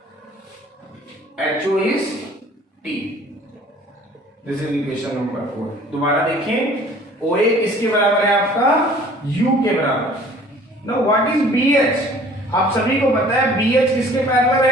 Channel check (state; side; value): normal; both; correlation 0.51